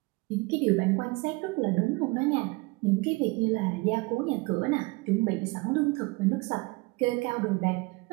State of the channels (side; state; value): left; quieter; 25.3 dB